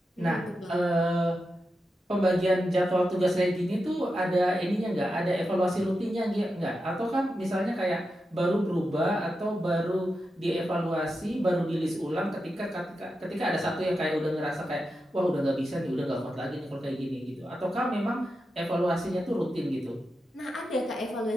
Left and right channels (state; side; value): normal; both; correlation 0.89